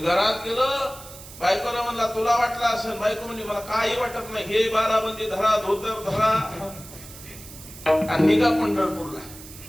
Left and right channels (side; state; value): right; noise; hiss, 16 dB below the sound